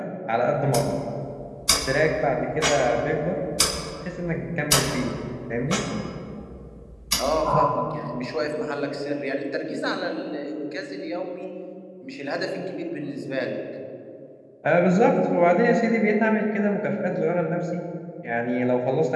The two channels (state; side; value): identical; both; correlation 1.00